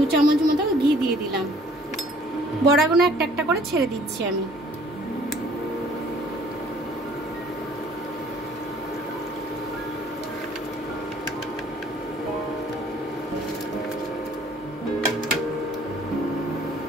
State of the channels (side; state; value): both; normal; correlation 0.56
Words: চামচ মতো ঘি দিয়ে দিলাম। বড়াগুলো একটা একটা করে ছেড়ে দিচ্ছি আমি।